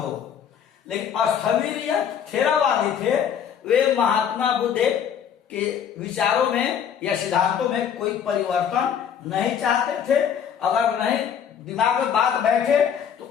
हो। लेकिन स्थविर या थेरावादी थे, वे महात्मा बुद्ध के विचारों में या सिद्धांतों में कोई परिवर्तन नहीं चाहते थे। अगर नहीं दिमाग में बात बैठे तो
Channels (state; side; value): quieter; right; 8.2 dB